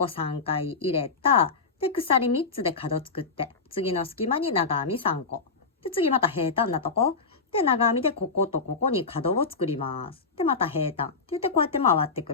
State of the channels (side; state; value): right; quieter; 4.5 dB